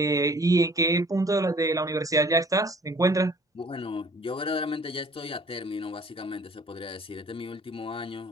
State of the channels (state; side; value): normal; both; correlation 0.53